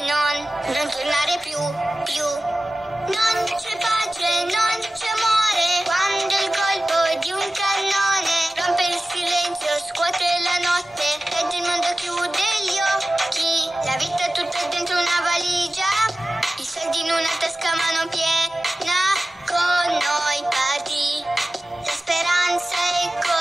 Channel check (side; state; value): both; normal; correlation 0.96